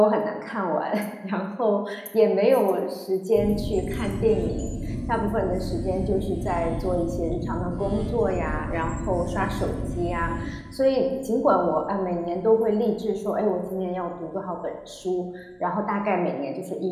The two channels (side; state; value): both; identical; correlation 1.00